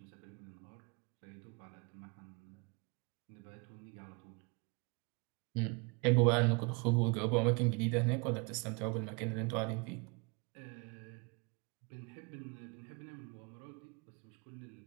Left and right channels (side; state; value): left; quieter; 31.9 dB